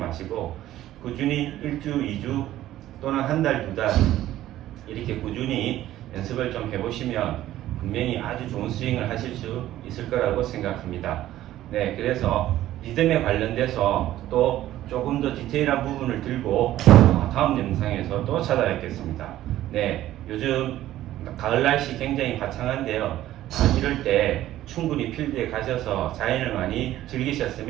꾸준히 1주, 2주 또는 한 달, 두 달 이렇게 꾸준히 연습을 좀 해보시면 분명히 아주 좋은 스윙을 하실 수 있을 거라고 생각합니다. 네, 그래서 리듬에 관련돼서 또 조금 더 디테일한 부분을 들고 다음 영상에서 또 찾아뵙겠습니다. 네, 요즘 가을 날씨 굉장히 화창한데요. 이럴 때 충분히 필드에 가셔서 자연을 많이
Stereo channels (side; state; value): left; quieter; 13.9 dB